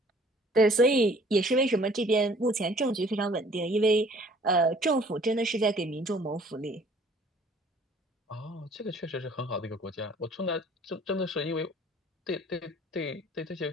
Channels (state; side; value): normal; both; correlation 0.55